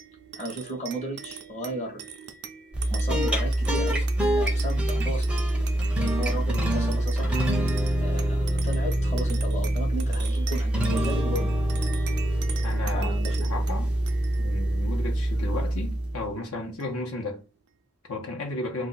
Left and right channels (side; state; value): both; normal; correlation 0.83